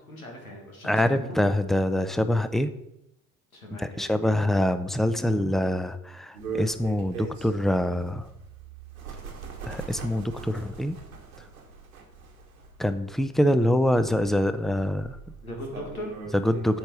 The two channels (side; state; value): both; normal; correlation 0.88